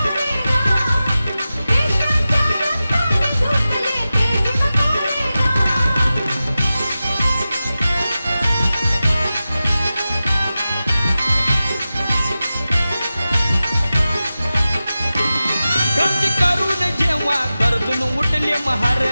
क्रांती करून जेव्हा गरजून उठले महार.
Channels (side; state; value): both; inverted; correlation -0.94